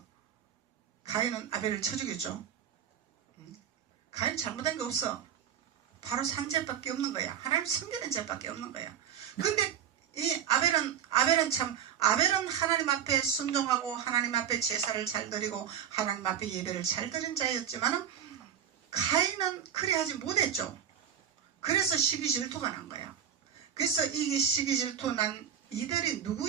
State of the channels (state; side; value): quieter; left; 9.0 dB